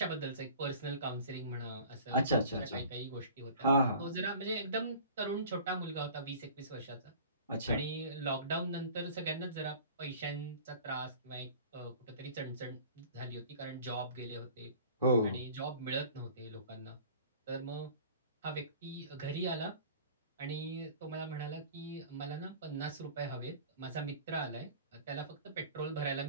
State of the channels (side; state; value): both; inverted; correlation -0.44